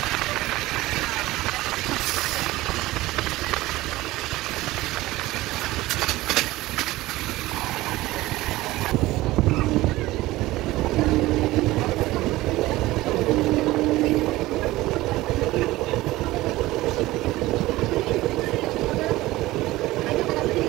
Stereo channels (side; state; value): left; quieter; 18.0 dB